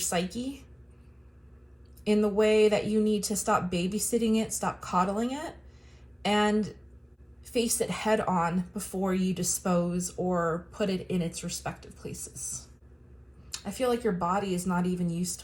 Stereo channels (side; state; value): both; identical; correlation 1.00